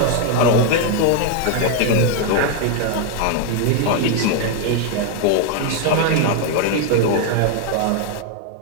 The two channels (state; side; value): different; both; correlation 0.01